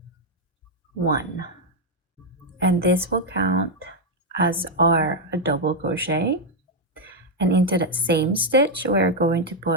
1, and this will count as our double crochet. And into that same stitch, we're going to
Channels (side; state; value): both; normal; correlation 0.00